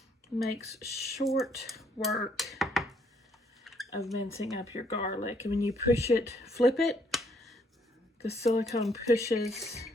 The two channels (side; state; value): both; normal; correlation 0.68